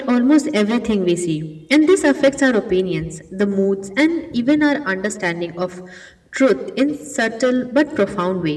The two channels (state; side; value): identical; both; correlation 1.00